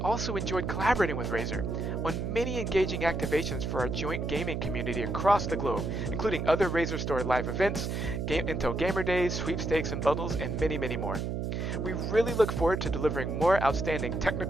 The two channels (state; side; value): noise; right; hum, 2 dB below the sound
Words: enjoyed collaborating with Razer on many engaging activations for our joint gaming community across the globe, including other RazerStore live events, Intel Gamer Days, sweepstakes and bundles, and many, many more. We really look forward to delivering more outstanding